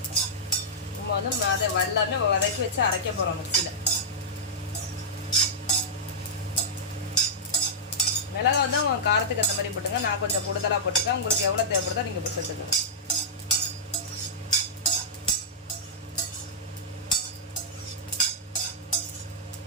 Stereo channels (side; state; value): both; normal; correlation -0.11